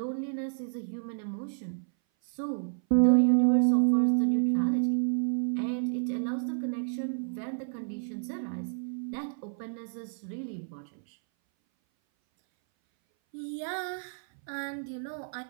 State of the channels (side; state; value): left; silent; 58 dB below the other